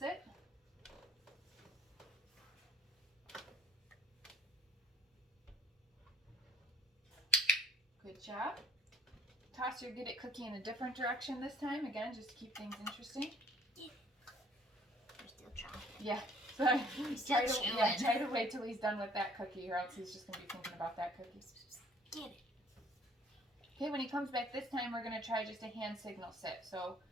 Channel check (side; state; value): both; normal; correlation 0.55